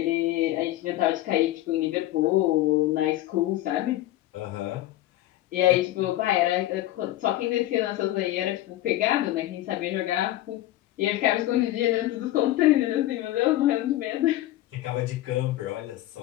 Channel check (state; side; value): quieter; right; 15.1 dB